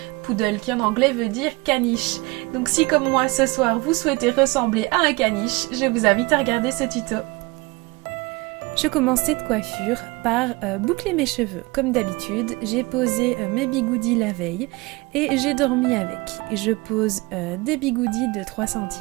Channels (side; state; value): left; quieter; 24.2 dB